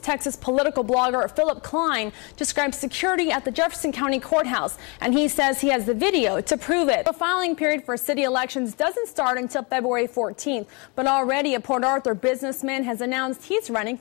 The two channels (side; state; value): right; quieter; 30.5 dB